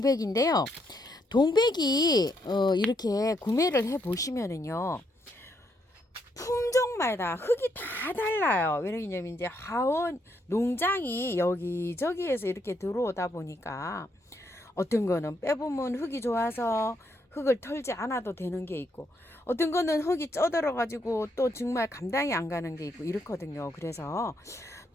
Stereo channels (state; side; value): normal; both; correlation 0.76